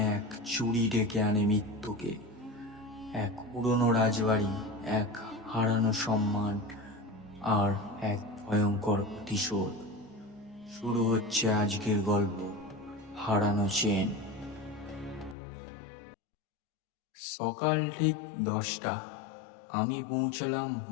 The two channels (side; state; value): right; drops out; at 15.4 s